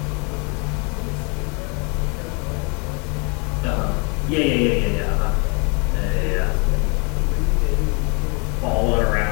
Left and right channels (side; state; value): right; quieter; 33.5 dB